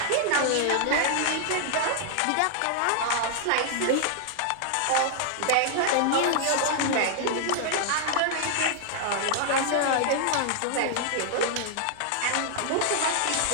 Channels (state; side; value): different; both; correlation 0.00